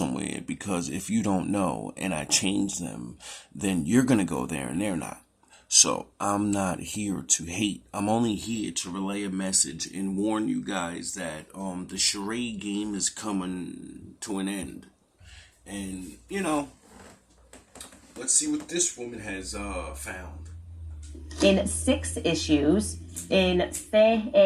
because if you don't know and I change them, then you're gonna go there and they're not. So I'm not here to hate. I'm only here to relay a message and warn you guys that the charade game is coming to an end. And, let's see what this woman has found. In 6 issues, in Fait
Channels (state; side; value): identical; both; correlation 1.00